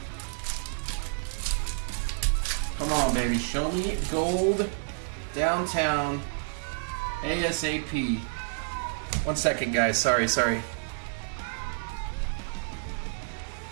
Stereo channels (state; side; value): silent; left; digital silence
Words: Come on, baby. Show me gold downtown ASAP. 1 second, guys. Sorry. Jeez,